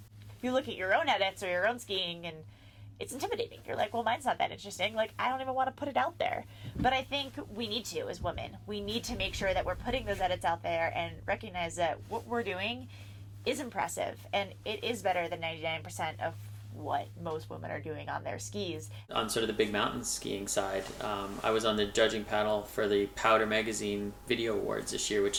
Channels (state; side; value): identical; both; correlation 1.00